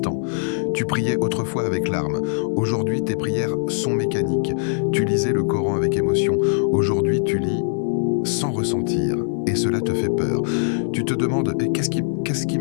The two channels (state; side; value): silent; right; 56 dB below the other